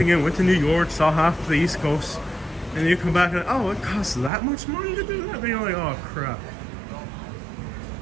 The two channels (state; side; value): drops out; left; at 4.3 s